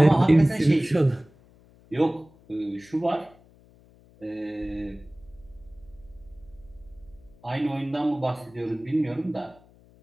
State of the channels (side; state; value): left; noise; hum, 27 dB below the sound